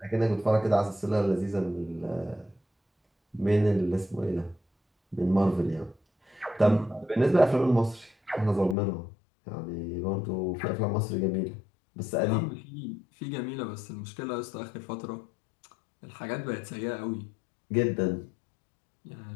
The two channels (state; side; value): drops out; right; at 8.8 s